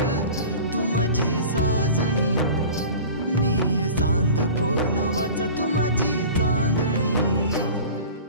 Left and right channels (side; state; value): both; inverted; correlation -0.39